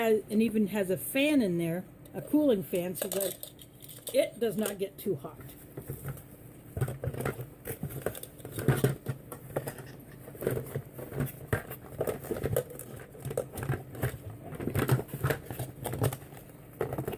even has a fan in there, a cooling fan, so that it does not get too hot.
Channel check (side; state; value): both; identical; correlation 1.00